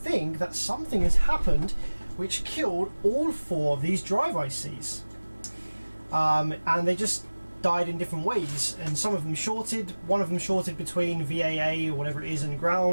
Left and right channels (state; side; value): inverted; both; correlation -1.00